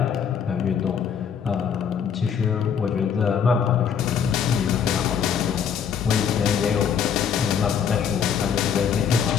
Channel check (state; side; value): quieter; right; 7.5 dB